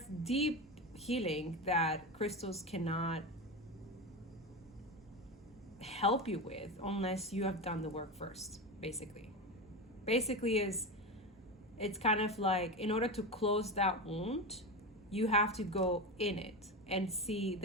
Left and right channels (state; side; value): normal; both; correlation 0.20